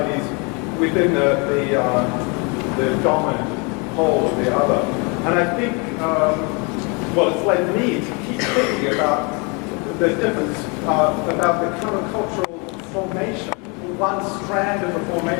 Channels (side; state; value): right; quieter; 31.6 dB